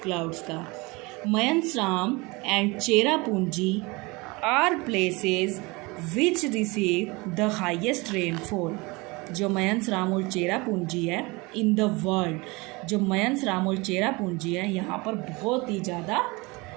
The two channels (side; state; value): left; quieter; 25.1 dB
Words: क्लाउड्स का। Mawsynram and Cherrapunji are places which receive the highest rainfall. जो मयनसराम और चेरापूंजी है इन द वर्ल्ड, जो मयनसराम और चेरापूंजी है यहाँ पर बहुत ही ज़्यादा